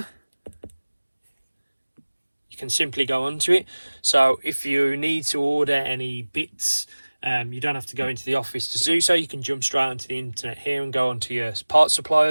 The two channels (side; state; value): both; inverted; correlation -1.00